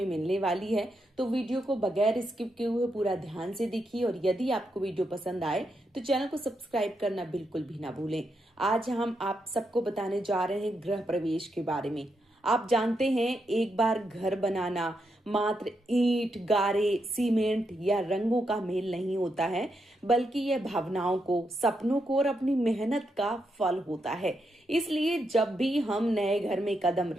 मिलने वाली है, तो वीडियो को बगैर स्किप किए हुए पूरा ध्यान से देखिए। और यदि आपको वीडियो पसंद आए तो चैनल को सब्सक्राइब करना बिल्कुल भी ना भूलें। आज हम आप सबको बताने जा रहे हैं गृह प्रवेश के बारे में। आप जानते हैं, एक बार घर बनाना मात्र ईंट, गारे, सीमेंट या रंगों का मेल नहीं होता है, बल्कि यह भावनाओं को, सपनों को और अपनी मेहनत का फल होता है। इसलिए जब भी हम नए घर में कदम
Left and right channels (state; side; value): normal; both; correlation 0.82